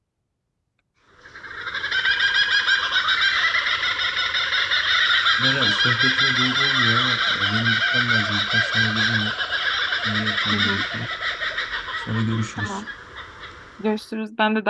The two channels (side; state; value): both; identical; correlation 1.00